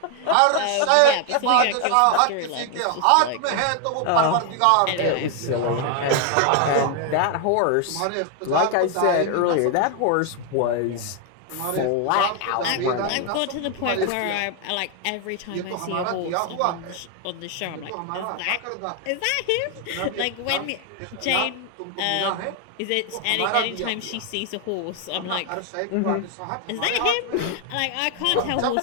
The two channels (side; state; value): both; different; correlation 0.00